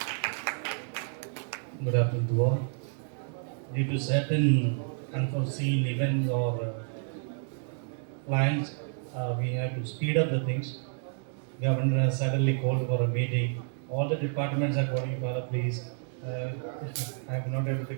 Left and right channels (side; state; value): left; silent; 58 dB below the other